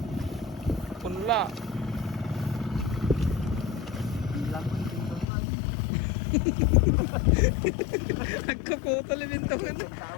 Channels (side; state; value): right; drops out; at 5.2 s